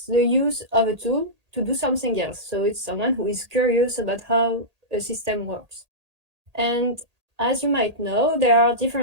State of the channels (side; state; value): left; late; 1.8 ms